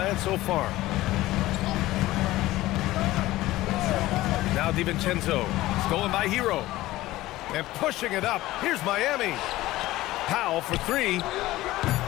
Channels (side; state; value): right; quieter; 17.0 dB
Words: so far. Now DiVincenzo, stolen by Hero. And pushing it up. Here's Miami. Powell for 3.